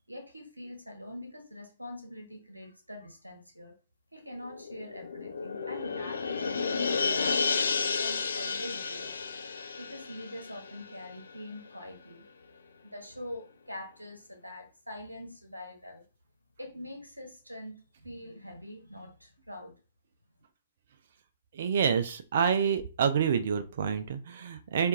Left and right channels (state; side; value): inverted; both; correlation -0.67